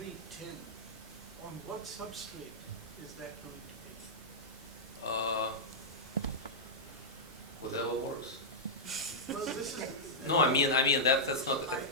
on what substrate is that going to be? Whatever works. Well, this is. No, I mean that's not.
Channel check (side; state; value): both; normal; correlation -0.10